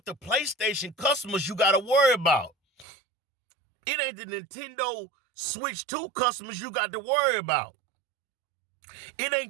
the PlayStation customers you got to worry about. It ain't the Nintendo Switch 2 customers you got to worry about. It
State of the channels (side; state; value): left; drops out; at 2.9 s